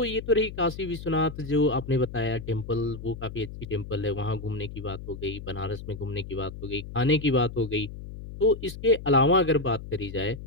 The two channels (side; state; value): left; noise; hum, 11 dB below the sound